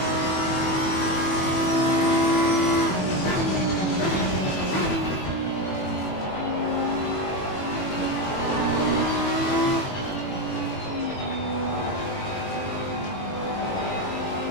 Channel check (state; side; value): late; right; 21 ms